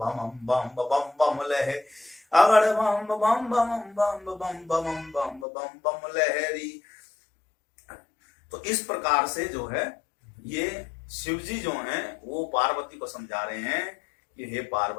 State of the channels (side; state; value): right; drops out; at 5.5 s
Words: बम बम बम लहे, अगड़ बम बम बम बम बम बम बम बम बम लहरी। तो इस प्रकार से जो है ये शिव जी जो हैं वो पार्वती को समझा रहे हैं कि हे